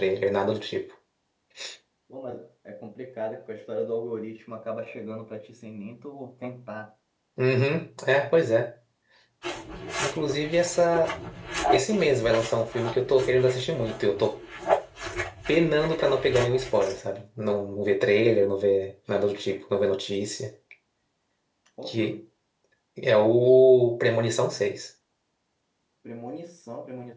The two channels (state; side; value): identical; both; correlation 1.00